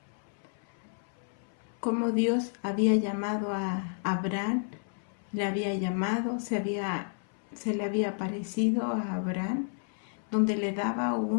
cómo Dios había llamado a Abraham, se le había aparecido a Abraham, donde le daba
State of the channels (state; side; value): silent; right; 57 dB below the other